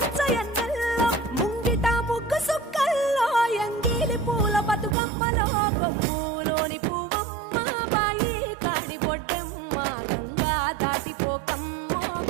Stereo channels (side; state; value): left; drops out; at 5.0 s